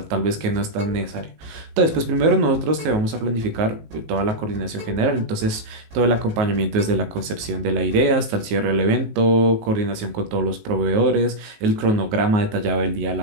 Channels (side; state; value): left; late; 19 ms